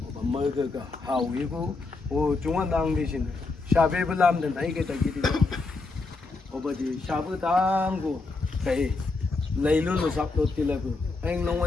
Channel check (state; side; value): quieter; right; 3.7 dB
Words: 머그가 하위고 오 중앙당 대신 샤베블람된 다이게 다기디 오버지 샤브당고 배 레일로 잡도 딜라고 엥